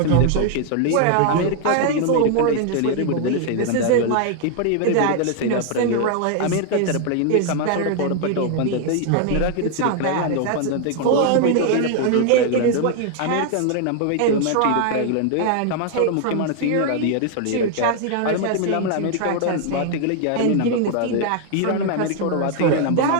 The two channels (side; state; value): both; different; correlation 0.00